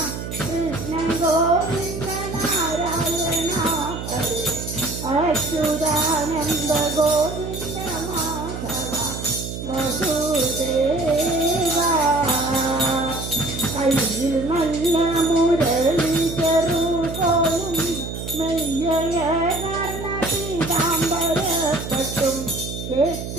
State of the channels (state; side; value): noise; right; hum, 7 dB below the sound